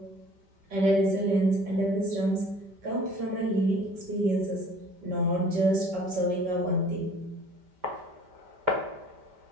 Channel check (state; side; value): late; left; 5.1 ms